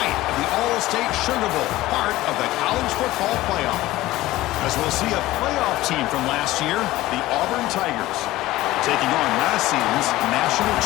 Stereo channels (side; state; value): right; quieter; 17.1 dB